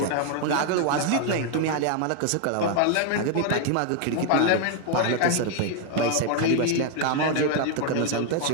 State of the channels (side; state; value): both; different; correlation 0.00